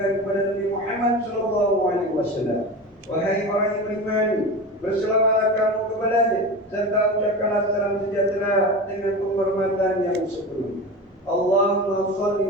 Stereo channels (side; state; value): both; normal; correlation 0.28